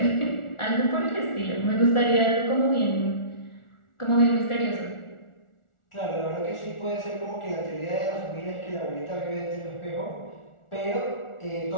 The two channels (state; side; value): late; right; 1.4 ms